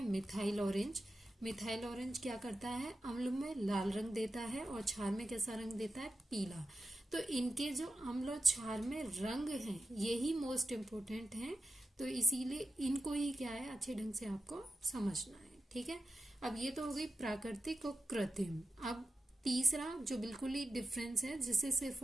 मिथाइल ऑरेंज। मिथाइल ऑरेंज क्या करता है, अम्ल में लाल रंग देता है और क्षार में कैसा रंग देता है, पीला। तो इनके जो अम्ल और क्षार में रंग हैं यही मोस्ट इम्पोर्टेंट हैं, तो इसीलिए इनको ही क्या है, अच्छे ढंग से आपको समझना है। ठीक है, अब ये तो हो गई प्राकृतिक और कृत्रिम। अब तीसरा जो बिल्कुल ही डिफरेंस है, जिसे सिर्फ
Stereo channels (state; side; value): normal; both; correlation 0.91